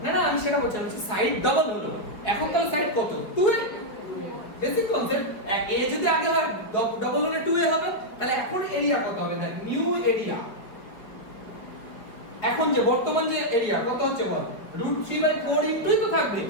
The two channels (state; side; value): late; right; 5.1 ms